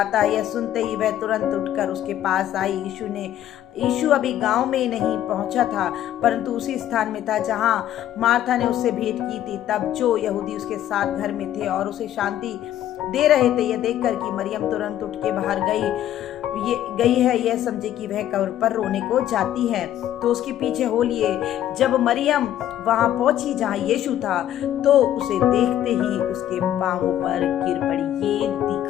है। यह सुनते ही वह तुरंत उठकर उसके पास आई। यीशु अभी गांव में नहीं पहुंचा था, परंतु उसी स्थान में था जहां मार्था ने उससे भेंट की थी। तब जो यहूदी उसके साथ घर में थे और उसे शांति दे रहे थे, यह देखकर कि मरियम तुरंत उठ के बाहर गई है, यह समझे कि वह कब्र पर रोने को जाती है, तो उसके पीछे हो लिए। जब मरियम वहां पहुंची जहां यीशु था तो उसे देखते ही उसके पांवों पर गिर पड़ी। ये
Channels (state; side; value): quieter; right; 11.9 dB